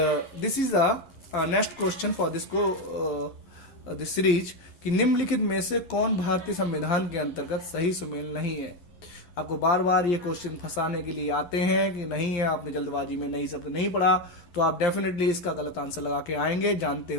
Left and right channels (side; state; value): right; late; 11 ms